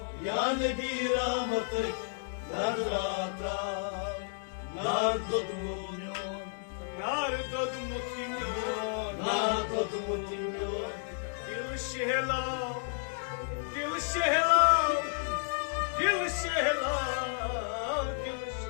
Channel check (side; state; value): right; silent; digital silence